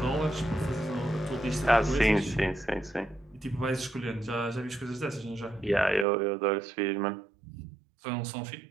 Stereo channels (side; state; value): left; drops out; at 6.1 s